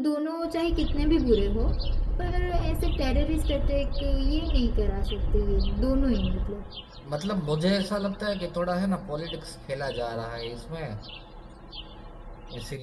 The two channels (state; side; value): identical; both; correlation 1.00